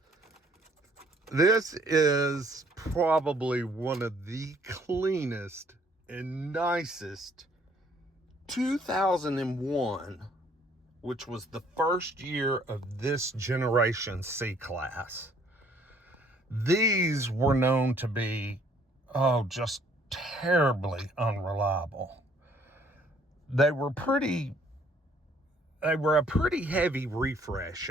This is probably one of the cleanest and nicest 2001, which was the first year of this generation C-Class. These were known to be, just terribly unreliable. They were a pretty heavy refresh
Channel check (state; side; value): normal; both; correlation 0.62